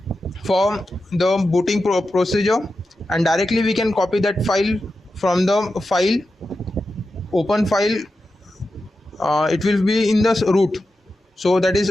for the booting procedure, and directly we can copy that file from the file, open file. It will be in the root, so that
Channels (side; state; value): both; normal; correlation 0.91